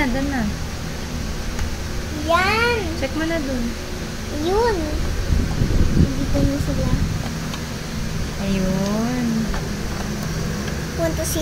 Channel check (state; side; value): identical; both; correlation 1.00